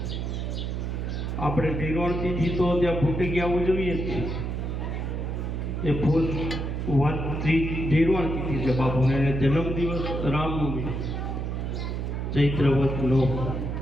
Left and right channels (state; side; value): noise; right; hum, 3 dB below the sound